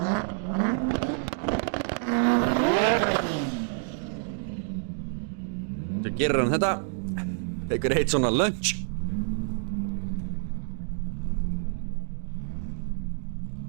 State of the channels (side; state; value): left; silent; digital silence